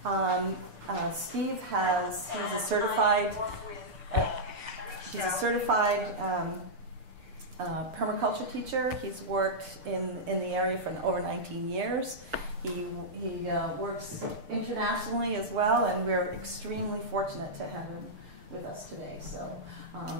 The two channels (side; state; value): left; late; 6.7 ms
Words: Steve he's a certified permaculture teacher. He's worked in the area for over 19 years. He works internationally as well, and we're extremely fortunate to have him with us today. So